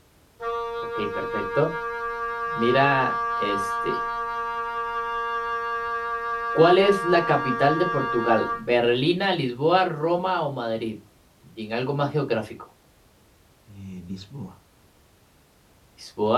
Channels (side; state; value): both; identical; correlation 1.00